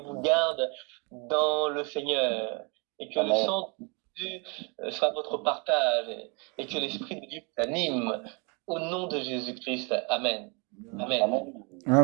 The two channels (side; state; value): left; quieter; 32.3 dB